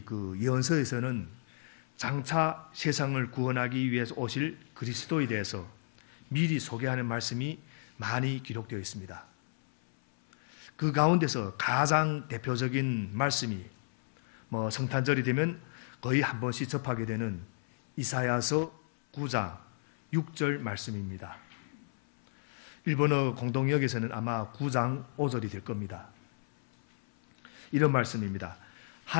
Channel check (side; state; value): right; silent; 56 dB below the other